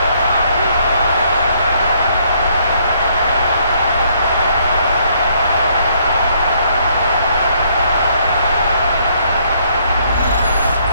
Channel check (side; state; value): both; inverted; correlation -0.68